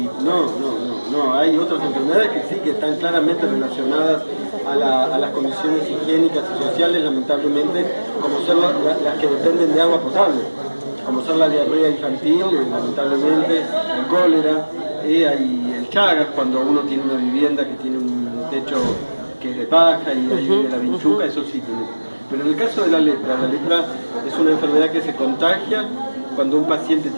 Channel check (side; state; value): both; inverted; correlation -1.00